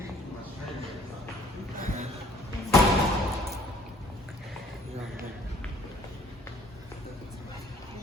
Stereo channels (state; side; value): normal; both; correlation 0.56